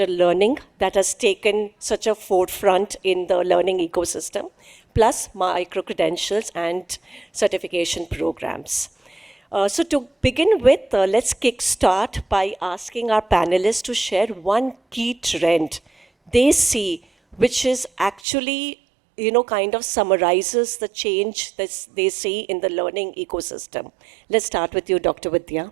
learning that has taken such a forefront in the learning ecosystem, plus micro-credentials and certification programs. So to begin with, let's kickstart by asking our panelists to share one key trend they see, which is actually, kind of summarizes the change that they see in the learning ecosystem. Let's start with you, Dr.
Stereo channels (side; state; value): left; drops out; at 18.2 s